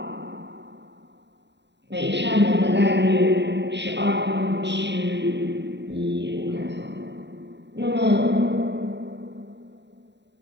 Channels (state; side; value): late; left; 0.51 ms